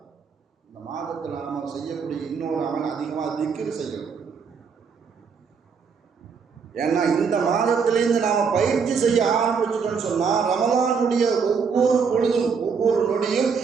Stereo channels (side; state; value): left; quieter; 5.8 dB